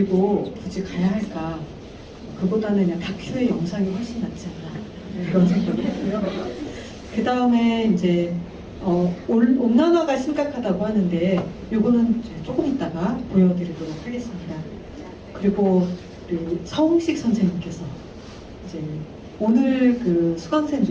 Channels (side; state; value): both; identical; correlation 1.00